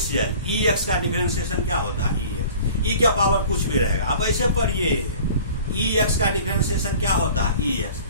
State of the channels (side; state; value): both; inverted; correlation -0.45